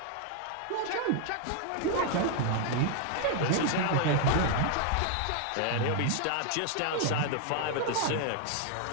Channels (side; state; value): both; different; correlation 0.00